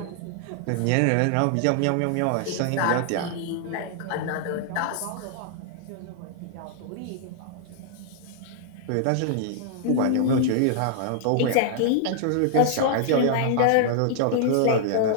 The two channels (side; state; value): both; different; correlation -0.01